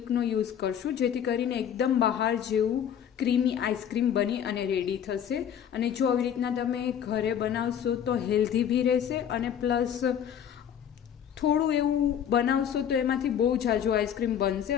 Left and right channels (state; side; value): quieter; right; 9.0 dB